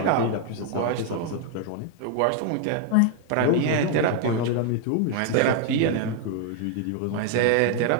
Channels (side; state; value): both; different; correlation 0.00